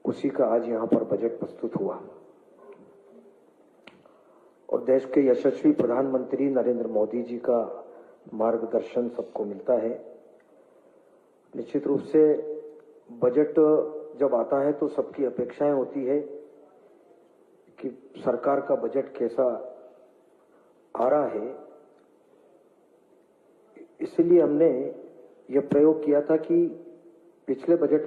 उसी का आज यहां पर बजट प्रस्तुत हुआ और देश के यशस्वी प्रधानमंत्री नरेंद्र मोदी जी का मार्गदर्शन सबको मिलता है। निश्चित रूप से बजट जब आता है तो सबकी अपेक्षाएं होती है कि सरकार का बजट कैसा आ रहा है। इसलिए हमने यह प्रयोग किया था कि पिछले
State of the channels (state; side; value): identical; both; correlation 1.00